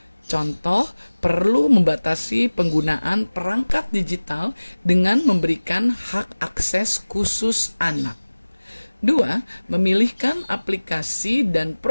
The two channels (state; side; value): inverted; both; correlation -1.00